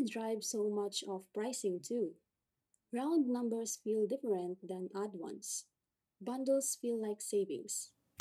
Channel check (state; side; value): identical; both; correlation 1.00